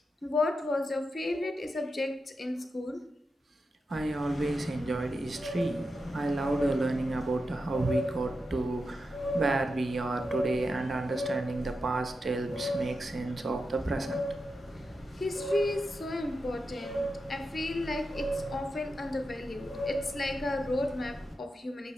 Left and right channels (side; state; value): both; normal; correlation 0.88